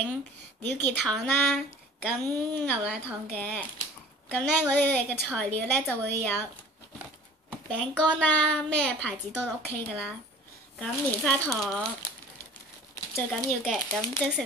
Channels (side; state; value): both; normal; correlation 0.46